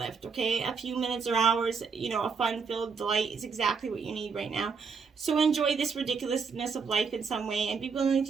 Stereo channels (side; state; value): left; quieter; 5.5 dB